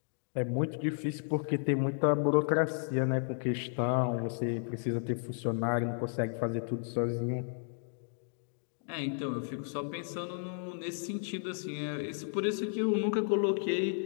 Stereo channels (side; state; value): right; silent; digital silence